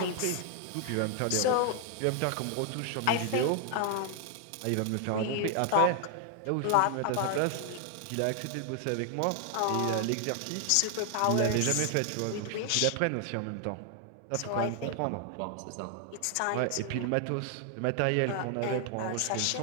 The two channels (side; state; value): both; different; correlation 0.00